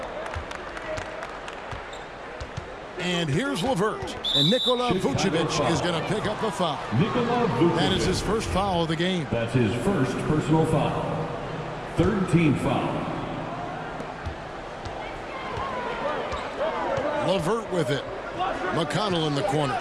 And here's Levert. And Nikola Vucevic is going to pick up the foul. That is his first foul of the game. That's his first personal foul. Third team foul. Levert with it. McConnell in the corner.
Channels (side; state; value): both; identical; correlation 1.00